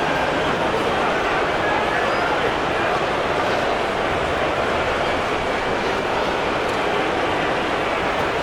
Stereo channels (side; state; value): both; identical; correlation 1.00